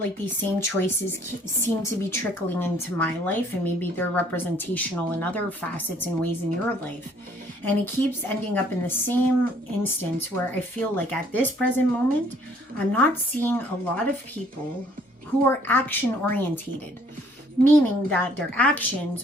like these same choices seem to be trickling into my life, and maybe they're representational in other facets and ways in your life, and it keeps ending up in the same instance where I feel like at this present moment I'm not seeing a lot of people who are action orientated, meaning that their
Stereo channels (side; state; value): both; normal; correlation 0.60